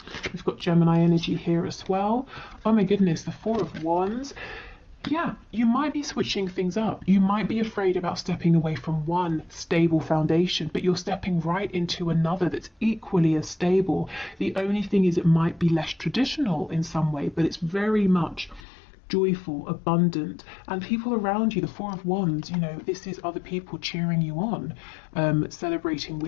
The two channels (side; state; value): right; drops out; at 18.6 s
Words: We've got Gemini energy here as well. Oh my goodness, the Four of Wands. Yeah, you might be switching things up. You might be afraid about stepping away from one stable foundation, but you're stepping right into another that's equally as stable. The only thing is it might be less traditional in some way, but it's very much joyful, abundant, and people around you, the Four of Wands, you know, this is other people cheering you on, celebrating